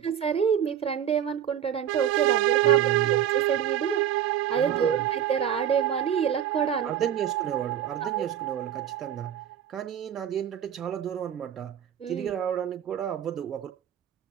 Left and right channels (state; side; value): quieter; left; 9.7 dB